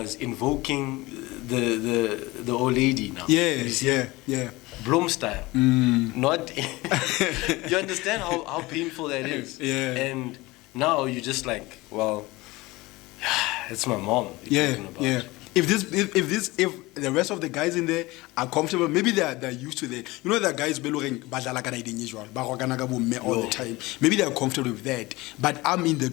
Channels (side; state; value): right; quieter; 21.2 dB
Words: invoking the old lady now. Yeah. Bloom style. Not. You understand how painful that is. Yeah. And now you're just like, well, it's my mom. Yeah. If the rest of the guys in there are comfortable, maybe they're used to that. You know, the guys all the time. Maybe they're comfortable with that. But I'm in